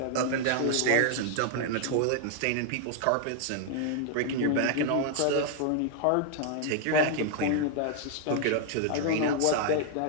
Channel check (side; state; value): both; different; correlation 0.00